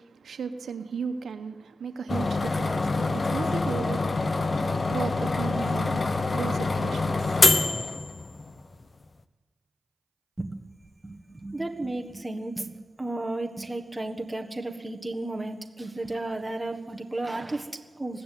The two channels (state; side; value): normal; both; correlation 0.93